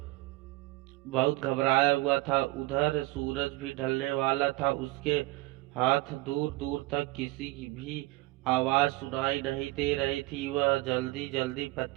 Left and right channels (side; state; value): left; quieter; 20.2 dB